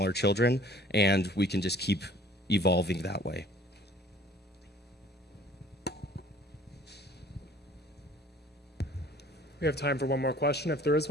children, and we can just keep evolving that way. We have time for one more question if there is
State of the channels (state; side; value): normal; both; correlation 0.52